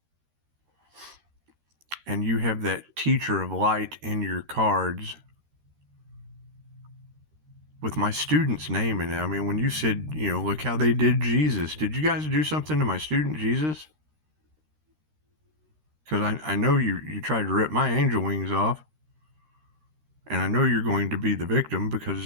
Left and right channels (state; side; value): late; left; 13 ms